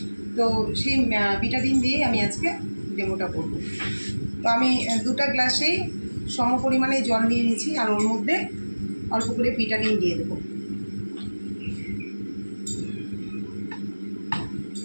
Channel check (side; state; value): both; inverted; correlation -1.00